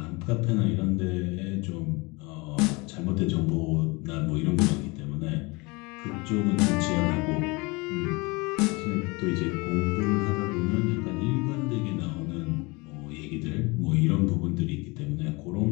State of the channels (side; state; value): right; quieter; 26.0 dB